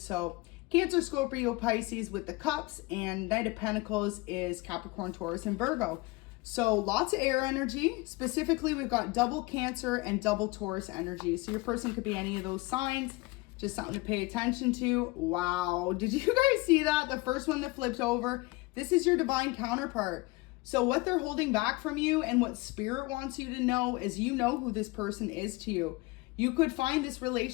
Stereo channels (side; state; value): right; quieter; 23.4 dB